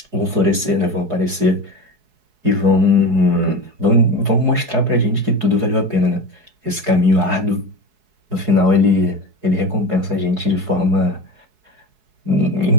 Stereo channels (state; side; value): late; left; 4.7 ms